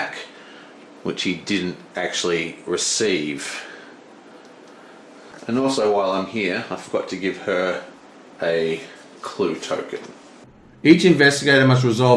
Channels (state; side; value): identical; both; correlation 1.00